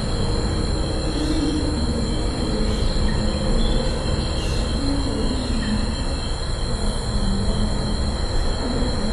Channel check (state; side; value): identical; both; correlation 1.00